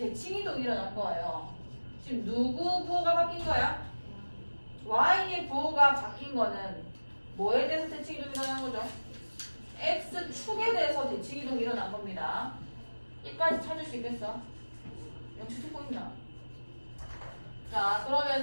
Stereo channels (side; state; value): both; inverted; correlation -1.00